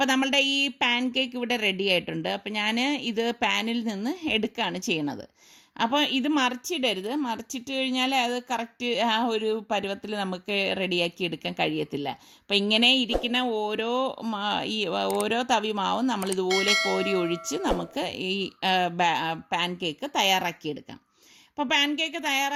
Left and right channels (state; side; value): identical; both; correlation 1.00